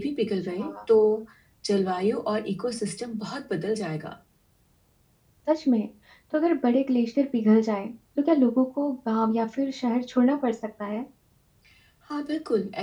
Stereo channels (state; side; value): identical; both; correlation 1.00